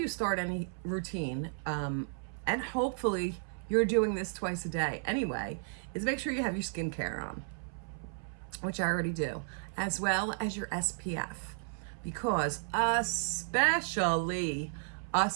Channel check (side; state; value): left; silent; 55 dB below the other